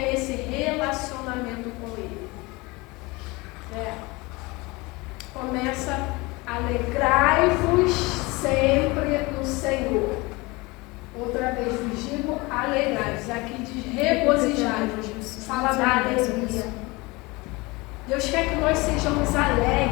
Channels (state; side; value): quieter; right; 24.0 dB